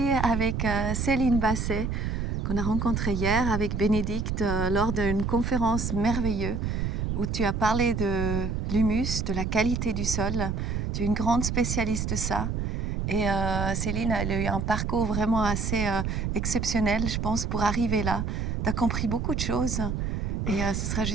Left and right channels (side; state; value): right; noise; rumble, 1 dB below the sound